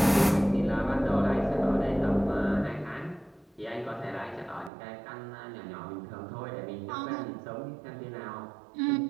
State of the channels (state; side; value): drops out; left; at 4.7 s